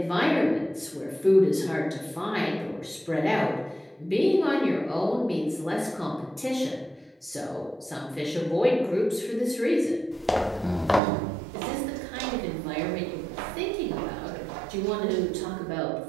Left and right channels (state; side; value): drops out; left; at 11.0 s